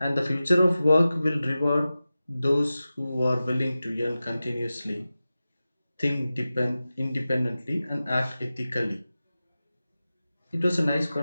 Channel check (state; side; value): inverted; both; correlation -0.95